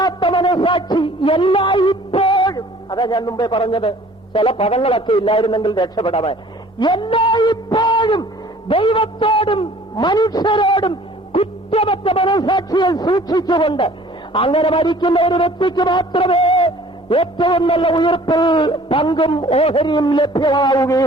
എല്ലായ്പ്പോഴും. അതാ ഞാൻ മുമ്പേ പറഞ്ഞത്, ചില പദങ്ങളൊക്കെ ഇല്ലായിരുന്നെങ്കിൽ രക്ഷപ്പെടാൻ. എല്ലായ്പ്പോഴും ദൈവത്തോടും മനുഷ്യരോടും കുറ്റമറ്റ മനസാക്ഷിയെ സൂക്ഷിച്ചുകൊണ്ട് അങ്ങനെ മരിക്കുന്ന ഒരു വ്യക്തിക്ക് മാത്രമേ ഏറ്റവും നല്ല ഉയർപ്പിൽ പങ്കും ഓഹരിയും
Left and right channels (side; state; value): both; normal; correlation 0.52